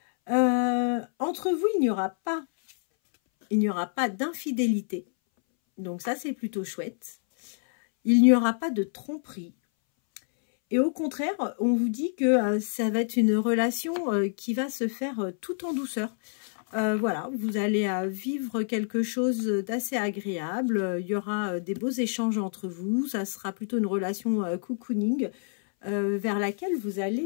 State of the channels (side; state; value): right; silent; 60 dB below the other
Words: Entre vous, il n'y aura pas d'infidélité. Donc ça, c'est plutôt chouette. Il n'y aura pas de tromperie. Et au contraire, on vous dit que ça va être une relation qui va se faire tout en douceur. Voilà, vous allez vivre quelque chose d'assez agréable. Il y aura des beaux échanges entre vous. Ça sera plutôt une relation cocooning vers laquelle vous